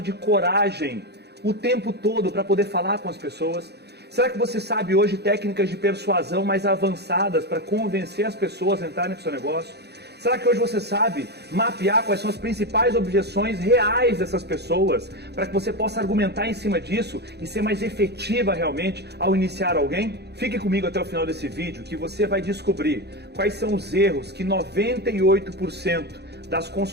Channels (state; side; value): late; left; 0.48 ms